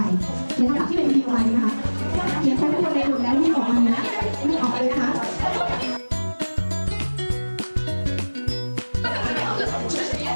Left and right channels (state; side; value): inverted; both; correlation -1.00